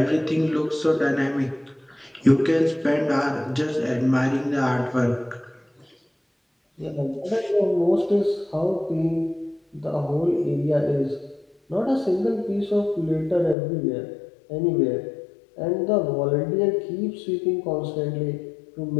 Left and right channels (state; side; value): drops out; right; at 13.6 s